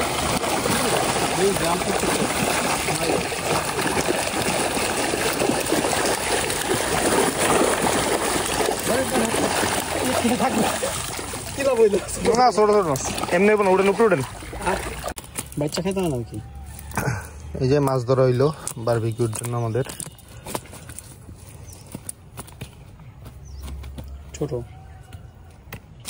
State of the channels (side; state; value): both; identical; correlation 1.00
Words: না, ছোট ছোট মাছ এমনি উঠেন, উপরে উঠেন, বাচ্চা খেতে না কি। এই যে মাছ ধরা হইলো বারবিকিউর জন্য আমাদের। ছোট